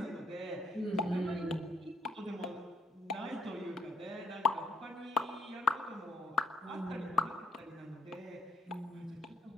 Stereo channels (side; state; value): both; normal; correlation 0.70